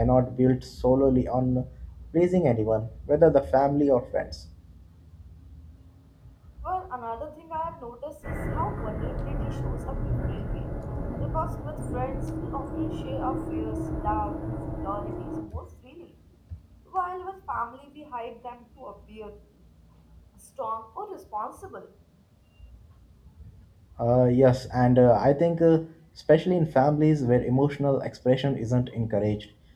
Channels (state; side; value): identical; both; correlation 1.00